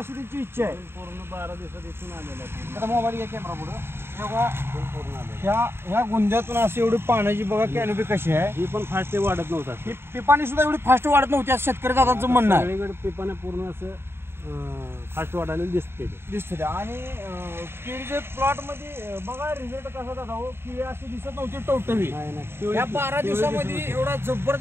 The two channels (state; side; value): late; left; 0.11 ms